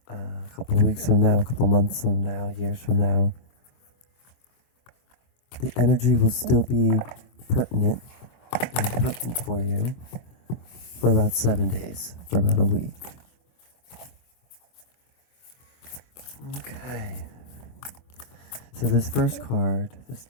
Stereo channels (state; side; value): late; right; 24 ms